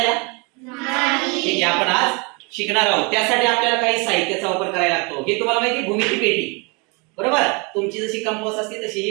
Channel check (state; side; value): quieter; left; 30.6 dB